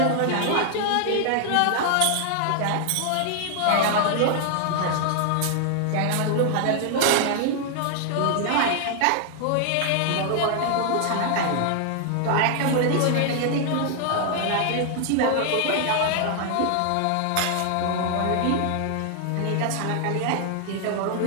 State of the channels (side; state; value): both; different; correlation 0.00